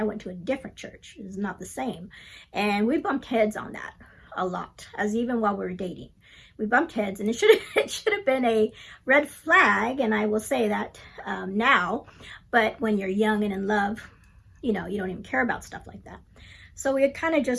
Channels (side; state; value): both; identical; correlation 1.00